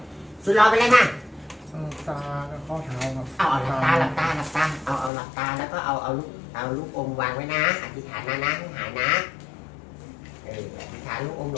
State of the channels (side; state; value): right; drops out; at 5.1 s